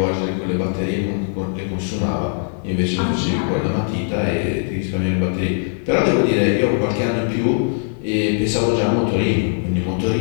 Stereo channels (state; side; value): silent; right; 58 dB below the other